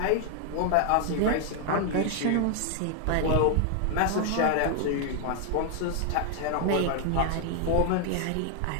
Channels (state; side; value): different; both; correlation 0.00